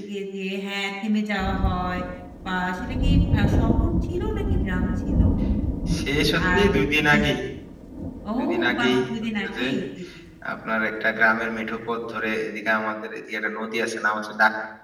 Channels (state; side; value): identical; both; correlation 1.00